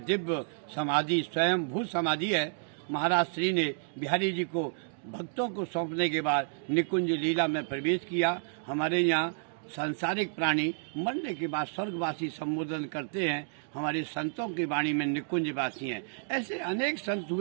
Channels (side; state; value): left; silent; digital silence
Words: दिव्य समाधि, स्वयं भू समाधि है। महाराज श्री ने बिहारी जी को भक्तों को सौंपने के बाद निकुंज लीला में प्रवेश किया। हमारे यहाँ सांसारिक प्राणी मरने के बाद स्वर्गवासी संबोधन करते हैं। हमारे संतों की वाणी में निकुंजवासी हैं। ऐसे अनेक संत